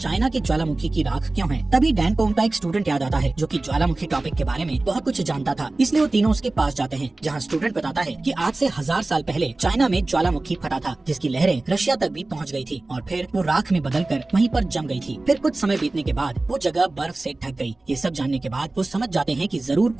की ज्वालामुखी की राख क्यों है। तभी डैन को उनका एक स्टूडेंट याद आता है जो कि ज्वालामुखी टॉपिक के बारे में बहुत कुछ जानता था, इसलिए वो तीनों उसके पास जाते हैं, जहाँ स्टूडेंट बताता है कि आज से 1000 साल पहले चाइना में ज्वालामुखी फटा था, जिसकी लहरें रशिया तक भी पहुँच गई थी और फिर वो राख में बदलकर वहीं पर जम गई थी। फिर कुछ समय बीतने के बाद वो जगह बर्फ से ढक गई। ये सब जानने के बाद वो समझ जाते हैं कि जरूर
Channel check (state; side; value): quieter; left; 3.0 dB